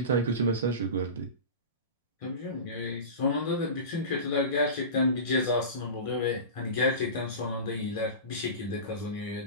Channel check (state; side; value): late; right; 1.6 ms